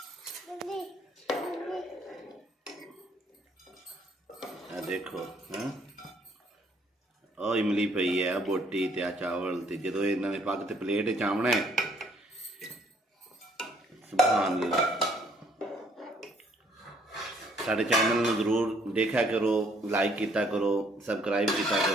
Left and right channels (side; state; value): both; normal; correlation 0.64